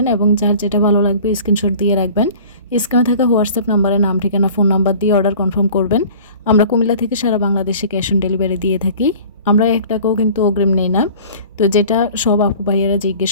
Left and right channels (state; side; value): inverted; both; correlation -0.45